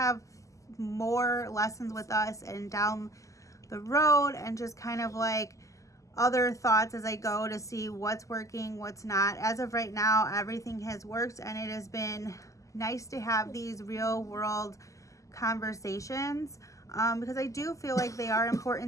more lessons with us and down the road and just kind of like other thoughts as I go to see what's working, what's not. As of right now, everything has worked, and it has been nice to have these real world conversations because I do feel like they are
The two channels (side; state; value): right; late; 0.16 ms